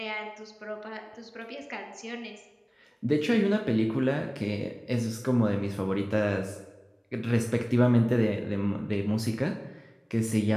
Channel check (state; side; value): identical; both; correlation 1.00